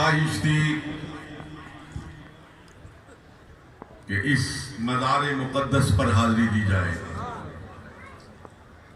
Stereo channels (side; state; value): both; identical; correlation 1.00